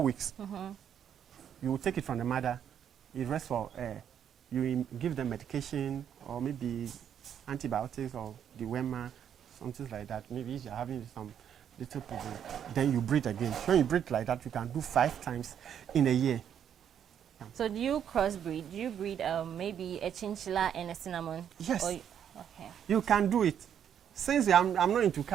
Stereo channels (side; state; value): left; quieter; 8.9 dB